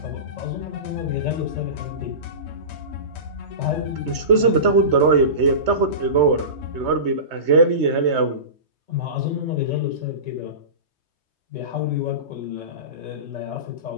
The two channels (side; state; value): left; late; 3.2 ms